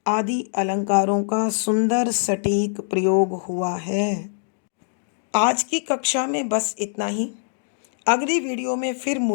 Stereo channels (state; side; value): silent; right; digital silence